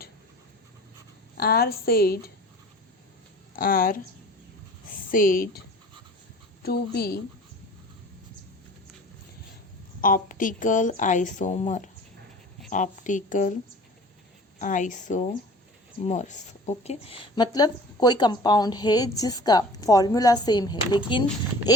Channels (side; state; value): both; normal; correlation 0.43